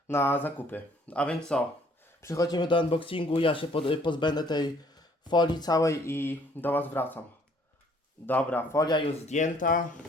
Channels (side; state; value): both; normal; correlation 0.60